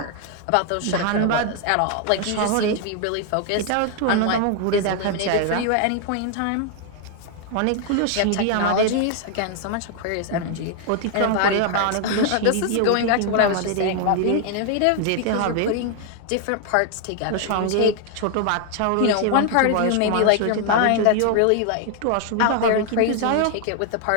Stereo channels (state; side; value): different; both; correlation 0.00